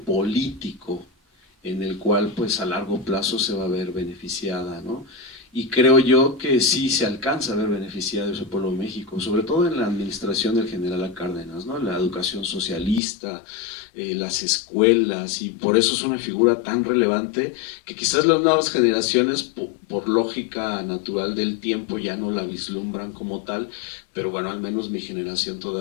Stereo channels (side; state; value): right; drops out; at 13.0 s